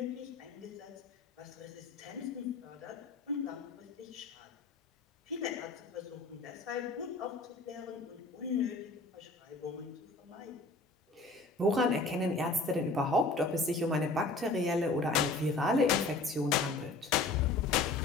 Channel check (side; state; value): right; quieter; 3.3 dB